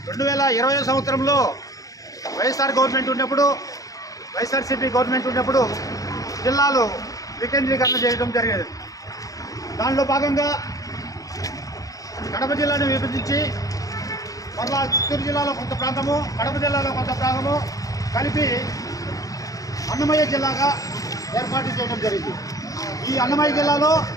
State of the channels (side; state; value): right; late; 0.17 ms